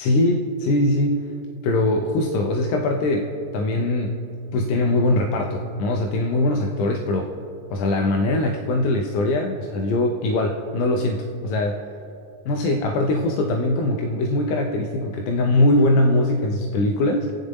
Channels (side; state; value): right; late; 20 ms